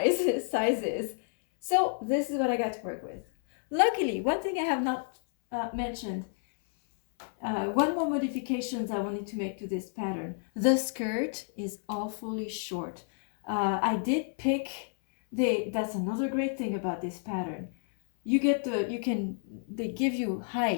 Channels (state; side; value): silent; right; 58 dB below the other